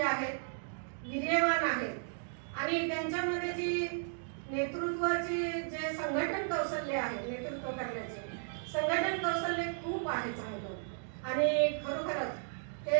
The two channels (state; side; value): silent; left; digital silence